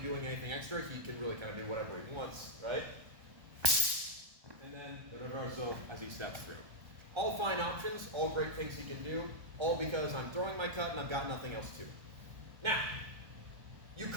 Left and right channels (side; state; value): left; late; 1.3 ms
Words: anything extra, he can really kind of do whatever he wants, right? And then the reversal as he steps through. All fine options, all great things he can do, all because I'm throwing my cut and I've got nothing else to. Now, you